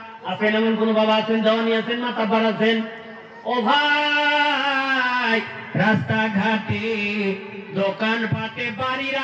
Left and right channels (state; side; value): identical; both; correlation 1.00